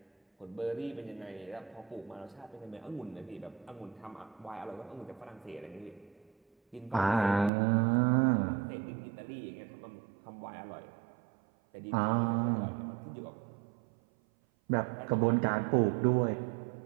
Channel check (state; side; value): drops out; left; at 7.5 s